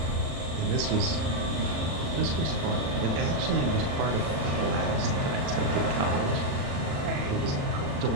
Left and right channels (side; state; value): left; late; 36 ms